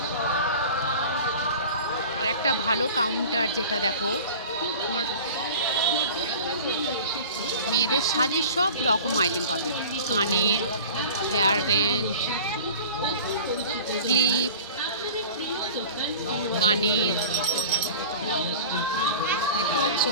আর একটা ভালো কাউন্টার, যেটা দেখো তোমার মেয়েদের সাজের সব রকম আইটেম পাবে। কানের, হেয়ার ব্যান্ড, ক্লিপ, কানের, দেখতে পাচ্ছ,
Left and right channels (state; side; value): inverted; both; correlation -0.40